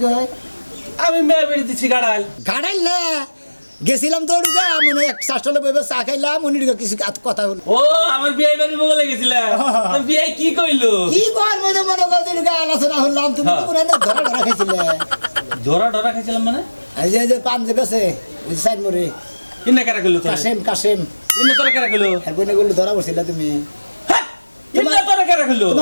কয় আমি মেয়ে বেরিয়ে দিচ্ছি গাড়াল গাড়াইল না গেছিলাম তো ওদিকে মনে এক শাসলে বইবে চা খাইলাম উনি কিছু কথা হলো ও আমার বিয়ে বাড়ি বলে গেছিলাম বিয়ে কি কইলো কি করবো যে মনে করছি আলোচনা হলাম তুমি তো কোনো ধরা ধরা খাইছিলে ধরা খাইছিলাম মানে এই যে পান যে গেছে সাইড মোড়ে কিনা কারা কইলো তোর কাশেম ইন্না তোরা কারা কইলো আর বইনে গুলো ধরা পড়ছিল তুমি ইন্না তোরা কারা কইলো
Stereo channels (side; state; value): both; inverted; correlation -1.00